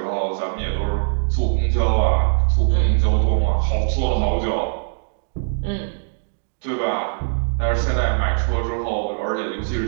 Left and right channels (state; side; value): silent; left; digital silence